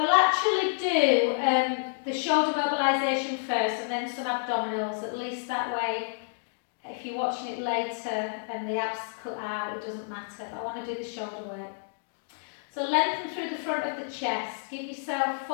actually do the shoulder mobilisation first and then some abdominals, at least that way if you're watching it later and the abs cut out, it doesn't matter. I want to do the shoulder work. So lengthen through the front of the chest. Give yourself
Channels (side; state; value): right; silent; digital silence